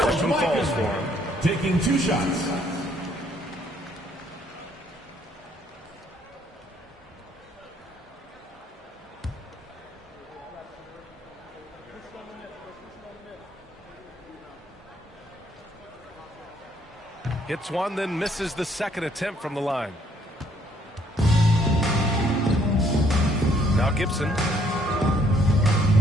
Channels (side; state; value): both; normal; correlation 0.66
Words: falls for him. Taking 2 shots. Hits one, then misses the second attempt from the line. Now Gibson.